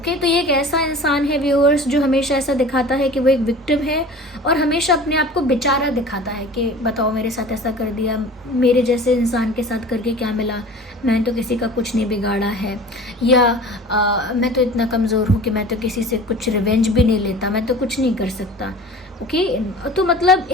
तो ये एक ऐसा इंसान है व्यूअर्स जो हमेशा ऐसा दिखाता है कि वो एक विक्टिम है और हमेशा अपने आप को बेचारा दिखाता है कि बताओ मेरे साथ ऐसा कर दिया, मेरे जैसे इंसान के साथ करके क्या मिला, मैंने तो किसी का कुछ नहीं बिगाड़ा है, या मैं तो इतना कमज़ोर हूँ कि मैं तो किसी से कुछ रिवेंज भी नहीं लेता, मैं तो कुछ नहीं कर सकता। ओके, तो मतलब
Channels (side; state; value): both; normal; correlation 0.40